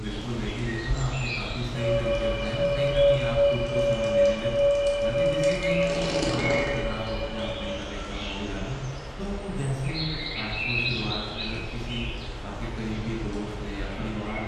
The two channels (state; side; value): identical; both; correlation 1.00